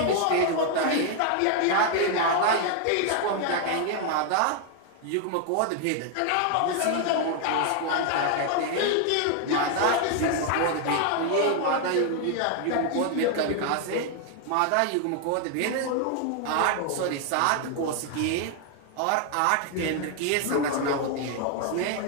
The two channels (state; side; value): different; both; correlation 0.00